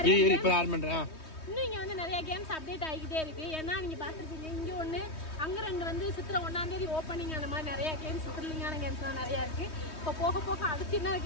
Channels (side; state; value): right; late; 3.2 ms